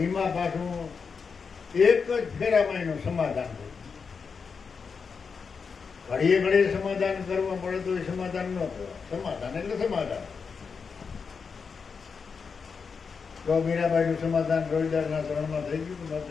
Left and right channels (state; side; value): quieter; right; 5.5 dB